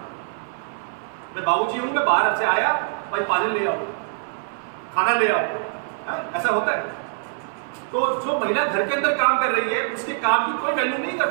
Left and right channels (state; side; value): silent; left; 59 dB below the other